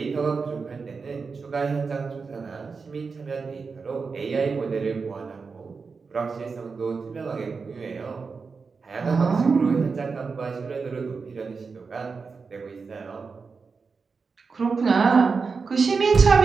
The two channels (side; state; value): left; quieter; 4.9 dB